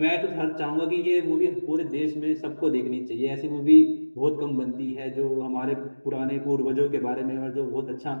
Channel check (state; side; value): inverted; both; correlation -1.00